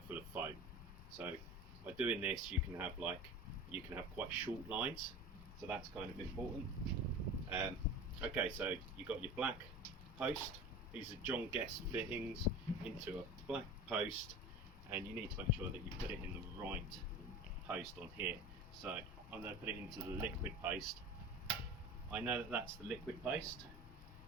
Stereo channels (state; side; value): normal; both; correlation 0.35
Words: full of foam. So by doing this, you can have quite short lines, so that's kind of important. Okay, so you've got your black post. These are John Guest fittings into a black post, and you need to make sure that you put it in the right post on here. So I'm going to put it into the liquid post. I know that that's the liquid post.